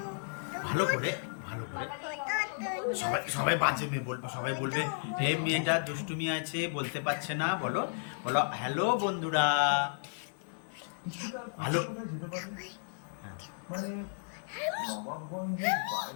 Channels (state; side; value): silent; right; digital silence